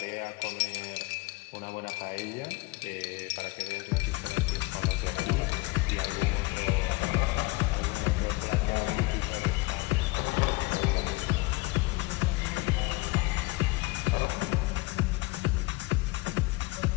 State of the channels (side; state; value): right; quieter; 22.8 dB